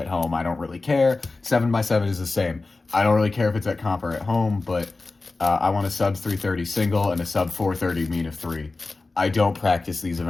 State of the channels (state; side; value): quieter; right; 3.5 dB